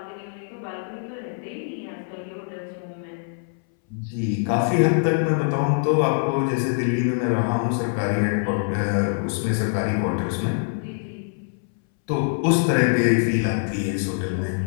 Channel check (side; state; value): right; silent; 63 dB below the other